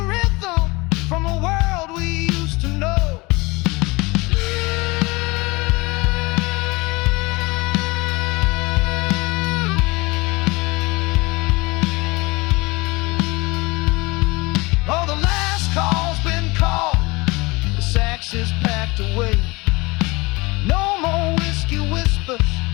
rhythm from a world we used to know. Oh, the last call's been called, the sax is packed away. No more whiskey whispers,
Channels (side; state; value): right; quieter; 24.2 dB